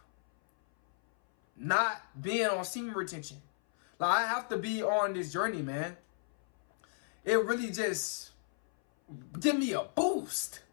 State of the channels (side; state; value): right; silent; 55 dB below the other